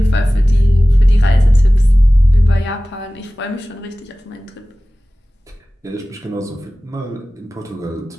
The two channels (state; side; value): normal; both; correlation 0.97